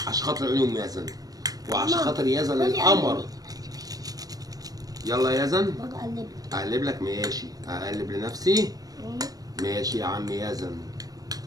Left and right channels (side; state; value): left; late; 0.18 ms